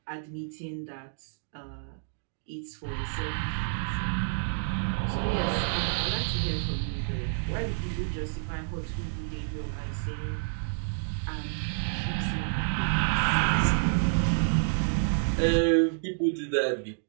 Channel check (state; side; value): silent; left; digital silence